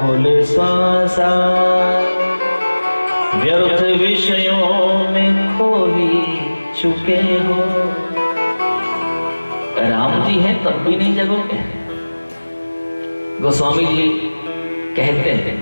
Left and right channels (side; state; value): both; inverted; correlation -1.00